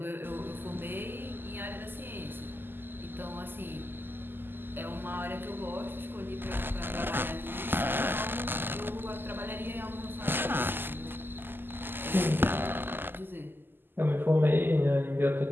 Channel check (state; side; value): late; left; 0.096 ms